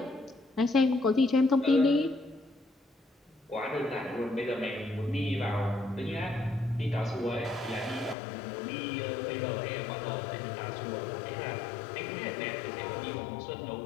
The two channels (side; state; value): right; drops out; at 8.2 s